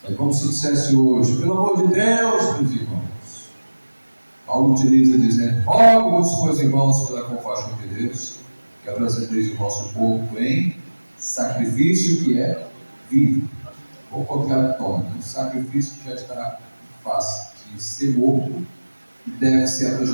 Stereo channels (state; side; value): inverted; both; correlation -1.00